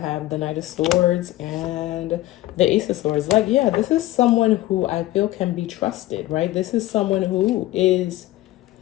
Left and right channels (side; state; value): right; quieter; 16.5 dB